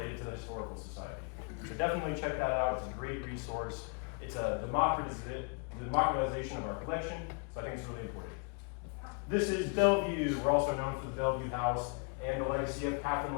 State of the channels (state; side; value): quieter; right; 36.0 dB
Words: to the Historical Society. So definitely check that out. It's a great resource. It's a democratization of our collection, so I think it's really important. This is Bellevue. We're also known for the Bellevue House and the legacy of Catherine